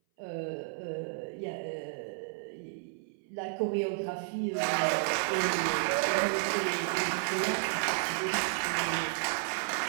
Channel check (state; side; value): silent; left; 56 dB below the other